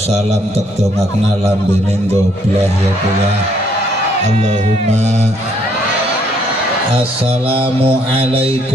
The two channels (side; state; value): both; normal; correlation 0.68